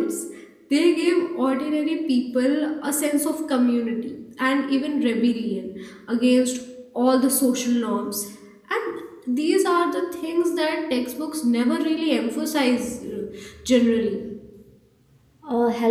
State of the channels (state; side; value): identical; both; correlation 1.00